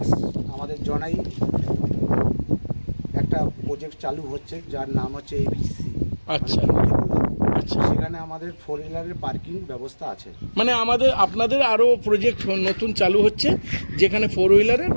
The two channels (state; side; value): inverted; both; correlation -1.00